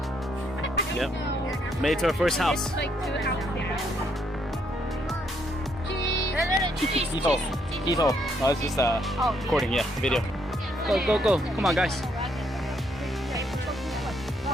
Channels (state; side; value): normal; both; correlation 0.73